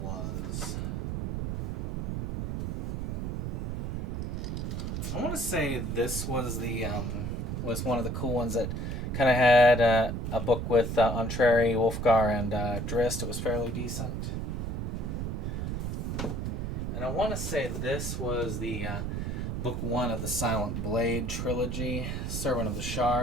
was. I want to say this was the was one of the cool ones that kind of had a book with Entreri, Wolfgar, and Drizzt. It was fairly decent. And I want to say this was the book 1 of the Silent Blade trilogy, Servant of the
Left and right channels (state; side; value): noise; right; rumble, 2 dB below the sound